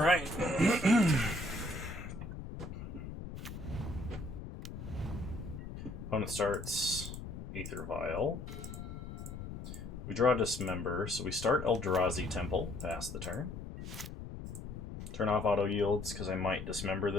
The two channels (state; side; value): noise; left; rumble, 9 dB below the sound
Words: Opponent starts Aether Vial. We draw Dismember, so we start Eldrazi Temple, pass the turn. Turn off auto yields, because I might Dismember